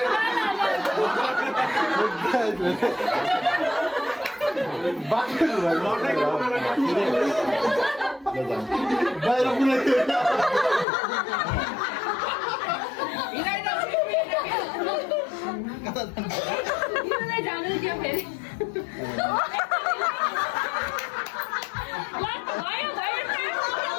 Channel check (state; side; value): drops out; right; at 10.9 s